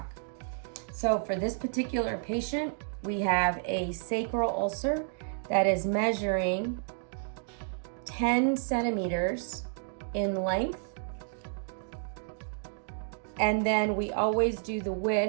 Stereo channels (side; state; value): left; silent; digital silence